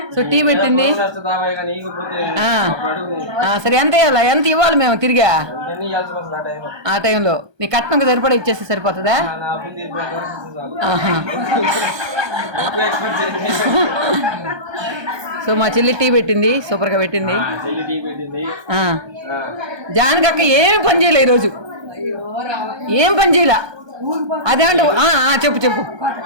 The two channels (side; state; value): left; late; 1.2 ms